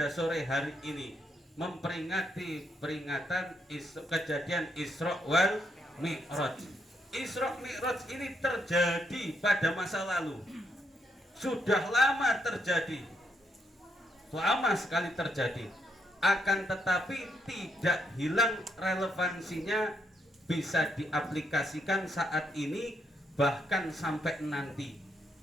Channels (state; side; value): normal; both; correlation 0.77